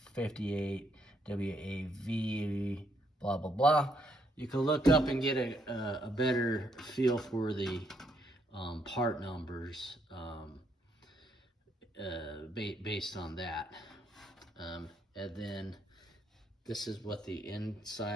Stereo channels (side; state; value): both; normal; correlation 0.74